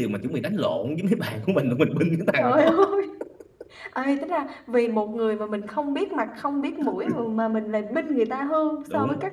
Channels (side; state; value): both; identical; correlation 1.00